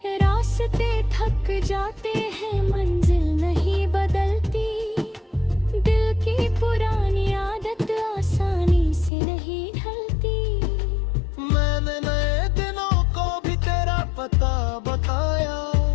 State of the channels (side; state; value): right; drops out; at 9.1 s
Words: रास्ते थक जाते हैं मंजिल नहीं बदलती, दिल की पुरानी आदत आसानी से नहीं ढलती। मैंने नए दिनों को भी तेरा पता बताया,